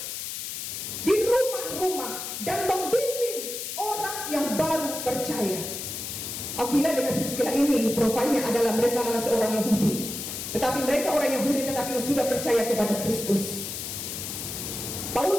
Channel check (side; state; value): left; noise; hiss, 6 dB below the sound